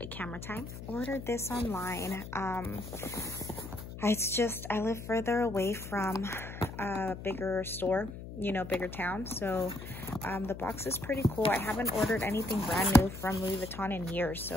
of camera time. Ordered this online. It's just, I live further away from a bigger store, you know, bigger town. So the box is pretty cool. I haven't ordered anything brand new from Louis Vuitton in years,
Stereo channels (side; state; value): left; noise; hum, 11 dB below the sound